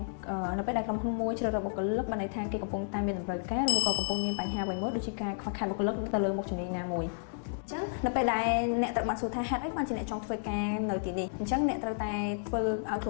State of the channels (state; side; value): silent; right; digital silence